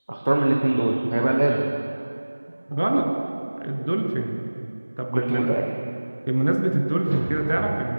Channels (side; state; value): both; inverted; correlation -1.00